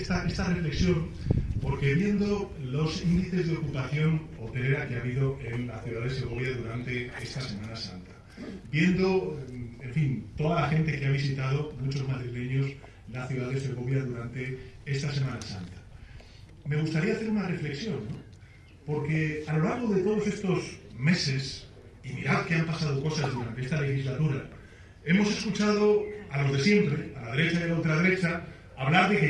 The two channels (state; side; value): identical; both; correlation 1.00